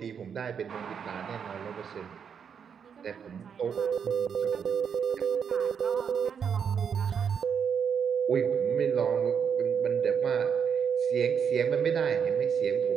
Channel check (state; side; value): quieter; left; 7.2 dB